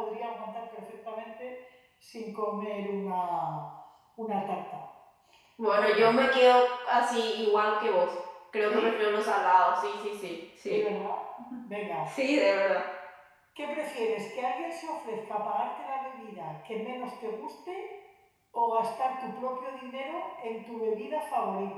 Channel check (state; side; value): identical; both; correlation 1.00